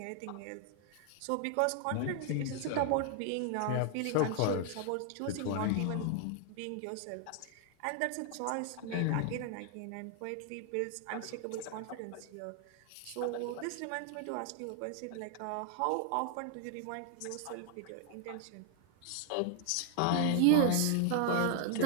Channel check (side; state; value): both; different; correlation 0.00